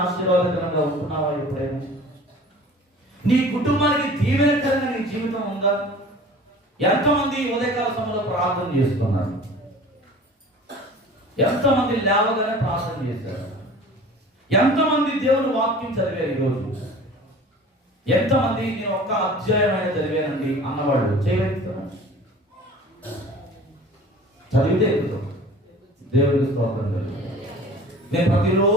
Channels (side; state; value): both; normal; correlation 0.43